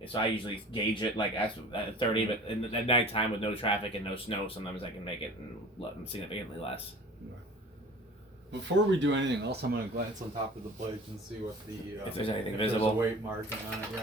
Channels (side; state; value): both; normal; correlation 0.42